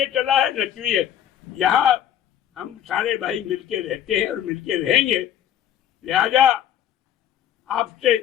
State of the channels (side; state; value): right; quieter; 10.4 dB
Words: चला है न क्यों है। यहाँ हम सारे भाई मिलके रहते हैं और मिलके रहेंगे। लिहाजा आपसे